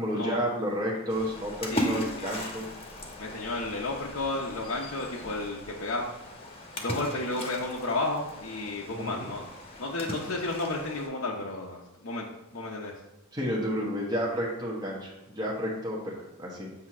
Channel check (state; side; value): normal; both; correlation 0.19